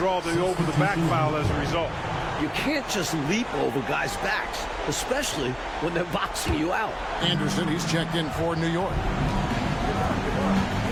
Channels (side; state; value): both; identical; correlation 1.00